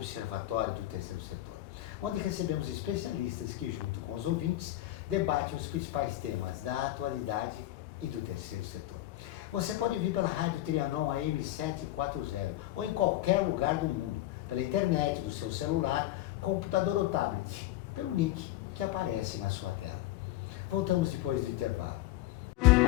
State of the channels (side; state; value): right; quieter; 15.4 dB